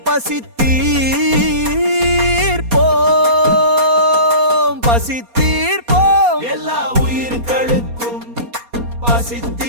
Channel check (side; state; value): left; late; 4.2 ms